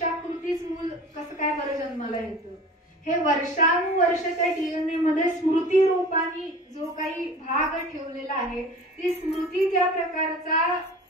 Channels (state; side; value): normal; both; correlation 0.40